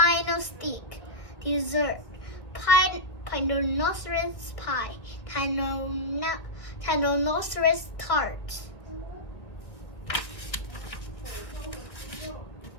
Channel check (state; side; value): late; right; 1.5 ms